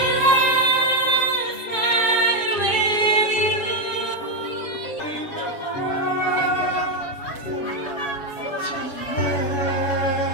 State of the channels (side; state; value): right; late; 7.3 ms